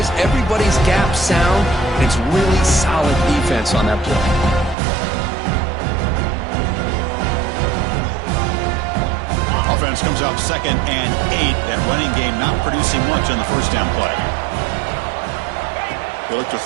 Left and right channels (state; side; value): drops out; left; at 4.8 s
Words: Everybody's gap sound, and it's really solid defense on that play. Offense comes out 2nd and 8. That running game not producing much on the first down play. They look to